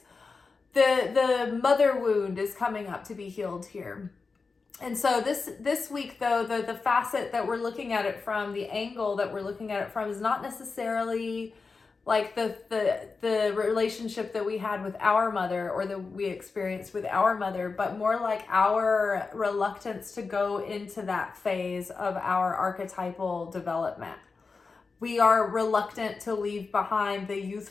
the mother wound is coming up to be healed here. And so this week, though, the facet that we're looking at it from, the angle that we're looking at it from, is not necessarily like the relationship that we had with our mother or that we experienced with our mother, but more like our reluctance to go into that phase of our archetypal development. We are reluctant to leave behind the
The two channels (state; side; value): quieter; right; 4.5 dB